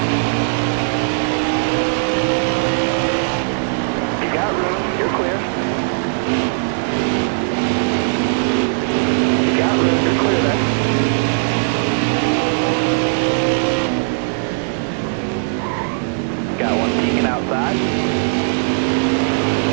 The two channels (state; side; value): silent; left; 64 dB below the other